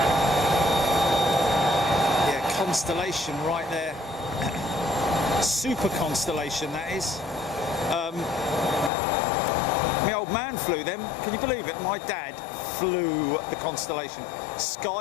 Constellation right there. Super Constellation, that is. My old man flew them. Can you believe it? My dad flew the Constellation.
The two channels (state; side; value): drops out; right; at 8.9 s